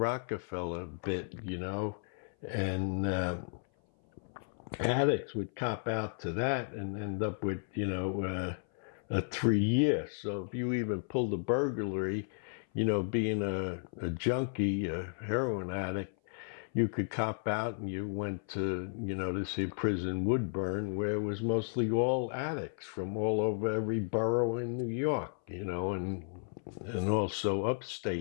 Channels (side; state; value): right; silent; 55 dB below the other